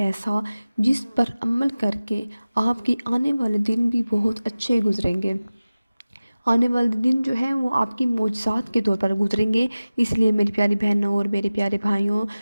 جس پر عمل کر کے آپ کے آنے والے دن بھی بہت اچھے گزریں گے۔ آنے والے دن جو ہیں وہ آپ کی معجزات کے طور پر گزریں گے۔ اس لیے میری پیاری بہنوں اور میرے پیارے بھائیوں،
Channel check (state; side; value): inverted; both; correlation -0.97